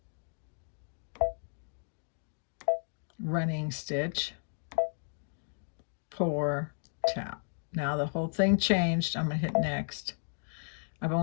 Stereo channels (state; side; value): silent; right; digital silence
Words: Running stitch. Pour, tap. Now the whole thing changed. I'm going to hit next. I've